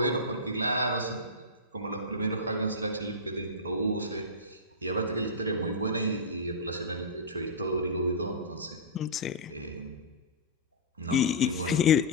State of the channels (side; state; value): both; normal; correlation -0.15